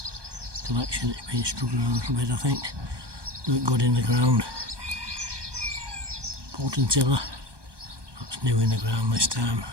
collection. It's been struggling a little bit, I think. Do it good in the ground. Potentilla. That's new in the ground this time.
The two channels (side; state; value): left; late; 1.2 ms